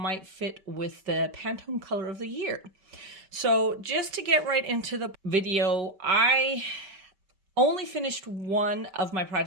fit with the Pantone color of the year. So just to get right into the video, I only finished one of my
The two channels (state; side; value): late; left; 5.2 ms